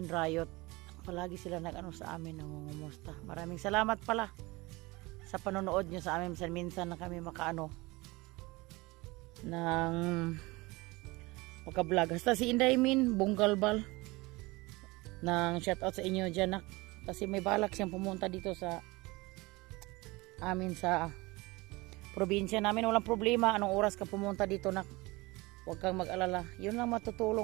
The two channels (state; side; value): quieter; left; 22.9 dB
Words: Rayot. Palagi sila sa amin nangungumusta. Maraming salamat pala sa panonood nyo sa amin. Minsan na kami ng maka-vlog. Hasta si Inday Min Bunggalbal ng shoutout sa inyo dyan kasi may balak siyang pumunta dito sa amin sa probinsya namin. Walang problema anong oras ka pumunta dito huwag kang mag-alala. Yun lang